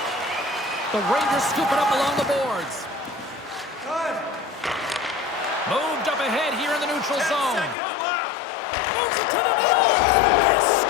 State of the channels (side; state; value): right; drops out; at 7.8 s